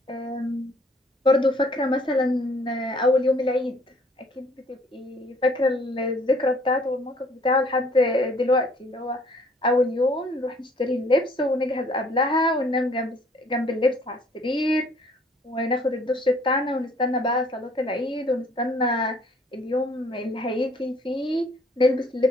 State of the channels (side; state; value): both; normal; correlation 0.59